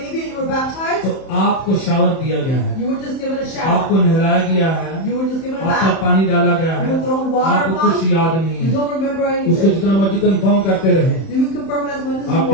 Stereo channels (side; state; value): right; late; 31 ms